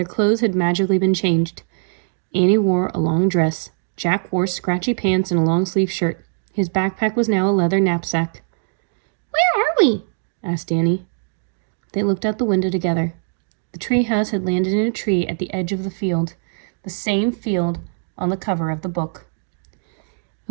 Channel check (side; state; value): left; silent; digital silence